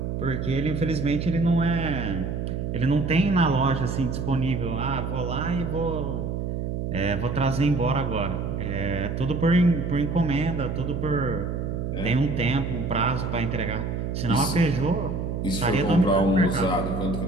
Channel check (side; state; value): right; noise; hum, 3 dB below the sound